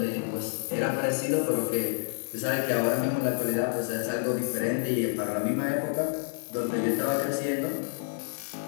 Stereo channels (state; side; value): silent; right; digital silence